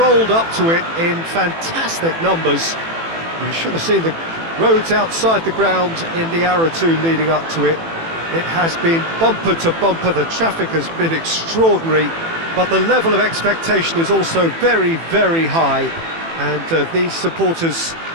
up to it in fantastic numbers. You should have seen the roads outside the ground in the hour or two leading up to it. It has been bumper to bumper, the traffic has been extraordinary, but the level of expectation is also very, very high. And these supporters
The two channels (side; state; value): left; late; 18 ms